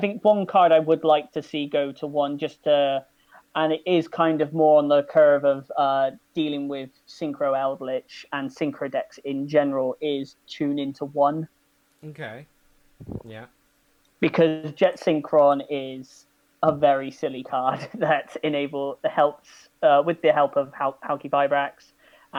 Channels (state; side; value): identical; both; correlation 1.00